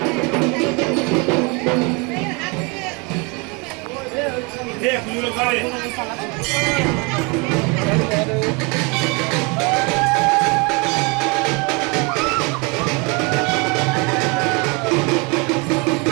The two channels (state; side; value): quieter; left; 30.0 dB